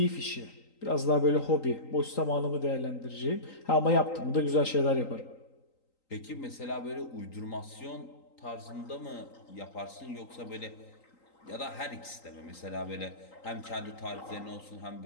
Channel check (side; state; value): right; late; 3.9 ms